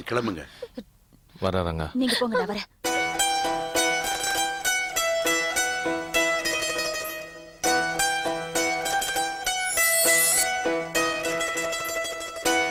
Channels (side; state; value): both; identical; correlation 1.00